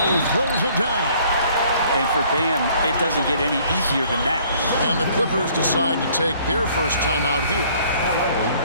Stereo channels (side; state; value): both; inverted; correlation -0.59